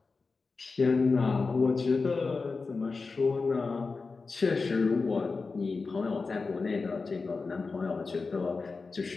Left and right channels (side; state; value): right; quieter; 4.2 dB